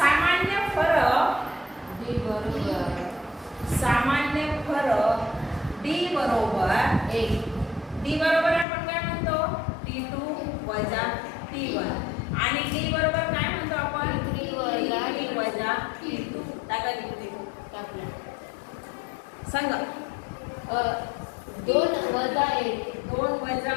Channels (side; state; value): right; drops out; at 8.7 s